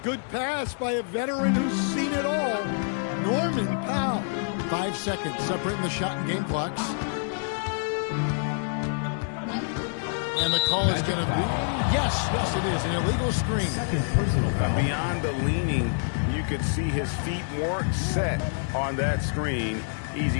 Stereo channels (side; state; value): right; silent; digital silence